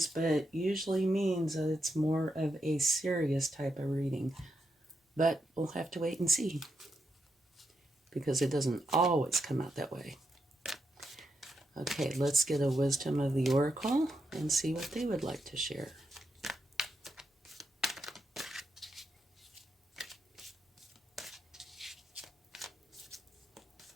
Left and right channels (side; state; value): both; normal; correlation 0.83